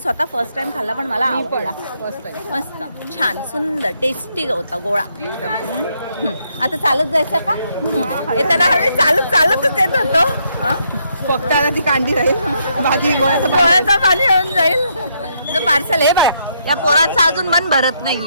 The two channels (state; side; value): inverted; both; correlation -0.75